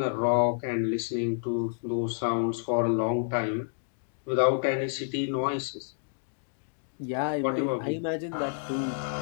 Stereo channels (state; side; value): silent; right; digital silence